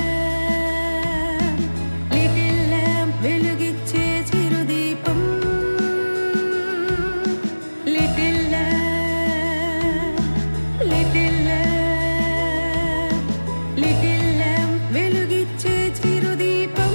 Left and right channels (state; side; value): inverted; both; correlation -1.00